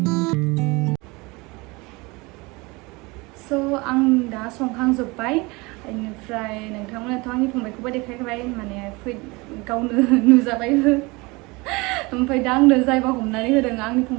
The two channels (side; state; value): left; quieter; 24.8 dB